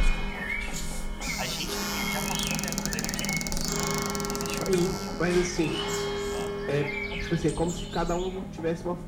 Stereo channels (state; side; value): identical; both; correlation 1.00